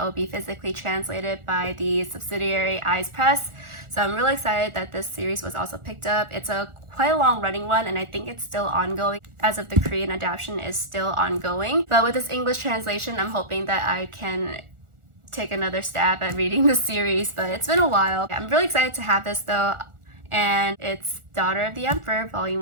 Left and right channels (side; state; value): left; late; 1.4 ms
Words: will be physically translated by the subsidiary Eyes Press. So I'm really excited that this series was also picked up. It's a quite a long running one, and I think it's still ongoing as of the Korean adaptation is still ongoing. But with this English translation, I'm hoping that I can take another stab at reading the series, but it's been a while. I'm really excited to have this though, and it's Daughter of the Emperor